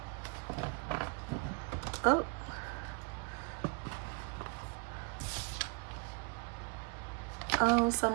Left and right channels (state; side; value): quieter; left; 33.9 dB